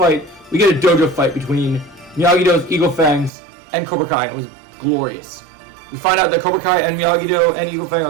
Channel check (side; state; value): left; drops out; at 3.3 s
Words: We get a dojo fight between Miyagi-Do's Eagle Fangs and Cobra Kai. It was glorious. We find out that Cobra Kai and Miyagi-Do and Eagle Fang